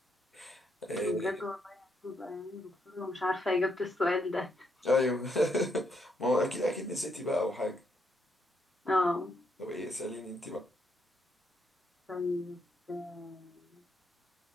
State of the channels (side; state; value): both; normal; correlation 0.76